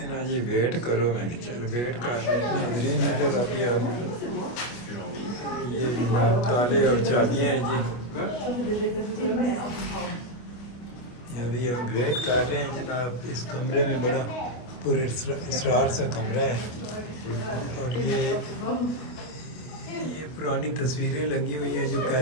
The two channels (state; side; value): late; right; 25 ms